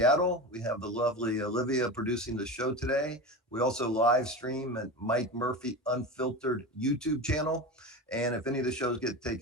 We have the lovely Olivia producing the show today. We also live stream at Mike Murphy Unfiltered YouTube channel. And if any of the shows get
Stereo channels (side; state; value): both; normal; correlation 0.26